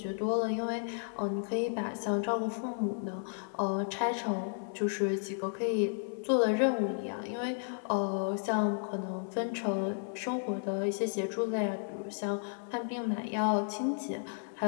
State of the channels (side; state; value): right; silent; 56 dB below the other